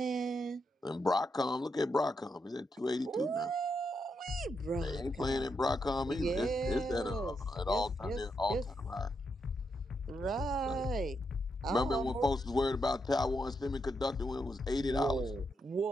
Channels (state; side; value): normal; both; correlation 0.82